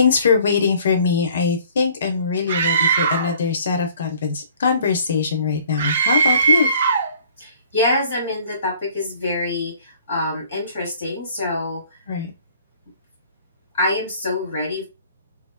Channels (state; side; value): inverted; both; correlation -0.55